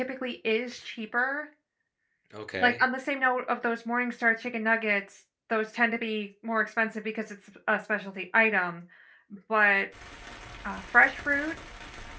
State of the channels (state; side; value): identical; both; correlation 1.00